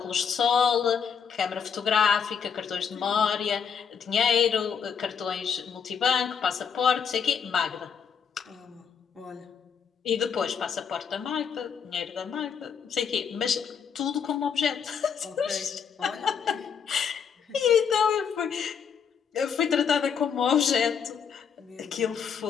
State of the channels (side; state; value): right; quieter; 6.9 dB